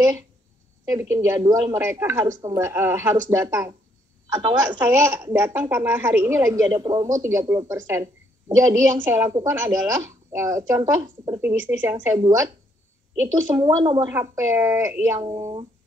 Saya bikin jadwal, mereka harus datang. Atau enggak, saya datang karena hari ini lagi ada promo 30%. Jadi yang saya lakukan adalah, contoh seperti bisnis yang saya buat, itu semua nomor HP yang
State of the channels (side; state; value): both; normal; correlation 0.70